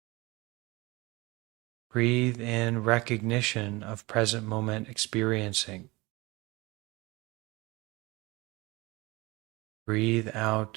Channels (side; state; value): left; quieter; 23.0 dB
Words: Breathe in recognition of present moment experiencing. Breathe